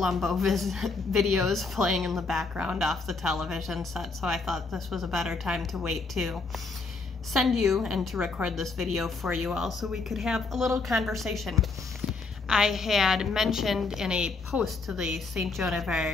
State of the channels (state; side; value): quieter; right; 4.0 dB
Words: videos playing in the background off the television set, so I thought this was a better time to wait to send you and to record this video for you all so we could have a little conversation. I had mentioned in a post to the St. Joan of